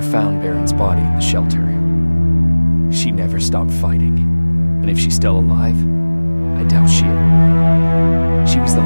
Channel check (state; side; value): inverted; both; correlation -1.00